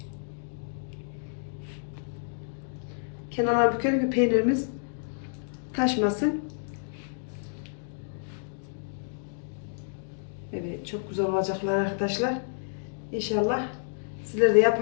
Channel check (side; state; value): right; silent; digital silence